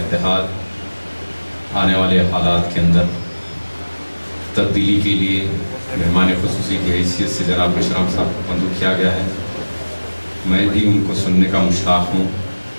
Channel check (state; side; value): inverted; both; correlation -1.00